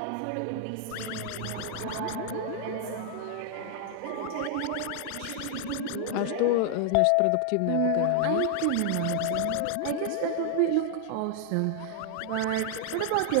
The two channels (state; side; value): different; both; correlation 0.00